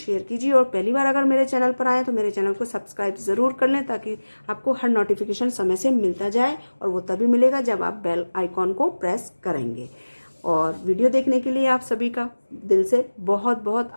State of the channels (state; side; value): inverted; both; correlation -1.00